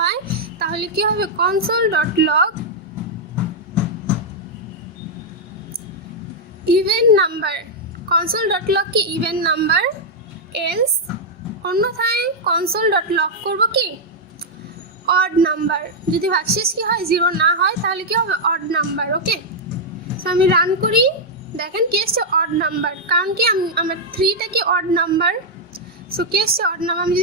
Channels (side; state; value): both; normal; correlation -0.04